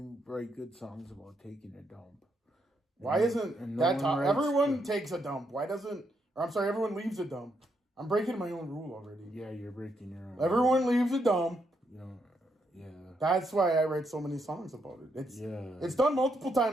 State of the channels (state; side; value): normal; both; correlation 0.78